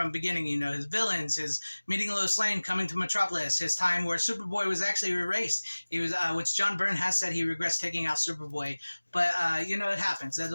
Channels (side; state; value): both; inverted; correlation -1.00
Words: beginning, his villains, his meeting Lois Lane, coming to Metropolis, his time where Superboy was actually erased. He was, which John Byrne has said he regrets taking out Superboy. But, it happens. That's